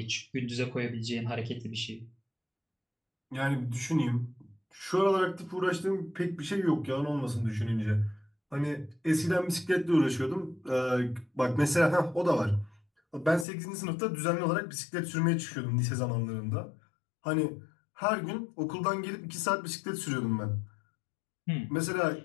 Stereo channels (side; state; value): right; drops out; at 13.5 s